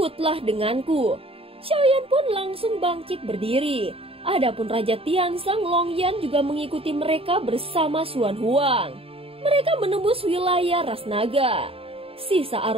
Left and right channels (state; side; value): late; left; 0.27 ms